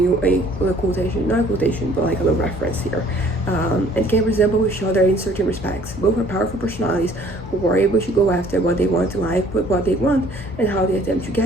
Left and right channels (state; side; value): normal; both; correlation 0.56